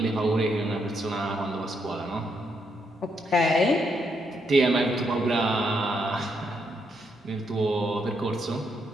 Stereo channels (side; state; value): both; normal; correlation 0.77